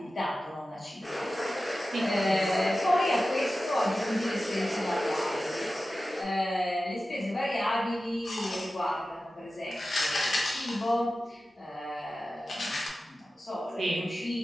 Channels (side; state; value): both; normal; correlation 0.94